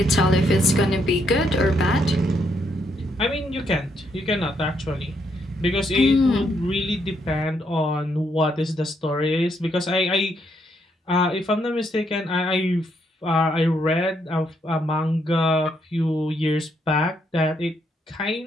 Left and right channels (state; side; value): normal; both; correlation 0.75